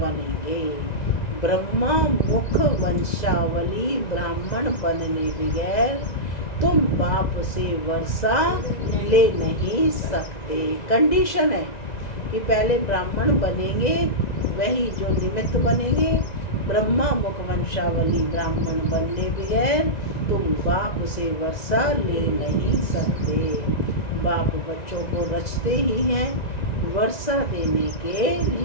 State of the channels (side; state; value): right; late; 1.9 ms